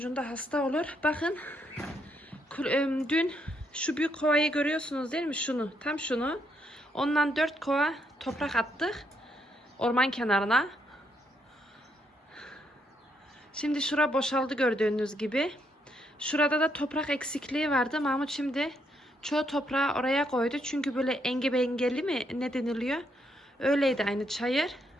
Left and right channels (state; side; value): normal; both; correlation 0.75